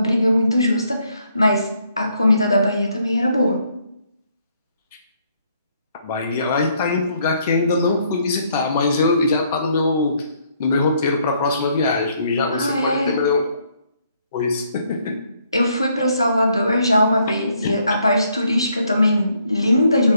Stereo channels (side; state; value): both; inverted; correlation -0.70